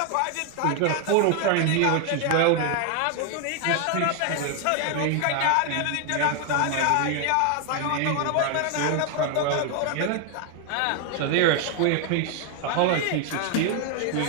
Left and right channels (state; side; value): different; both; correlation 0.00